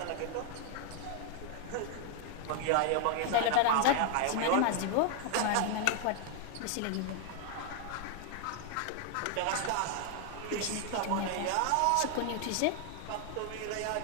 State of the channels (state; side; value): different; both; correlation 0.00